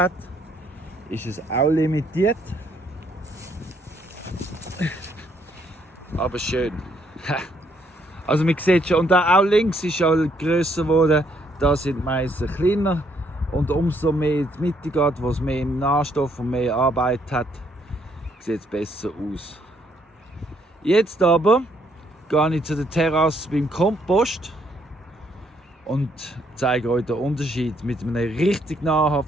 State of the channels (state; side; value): normal; both; correlation 0.70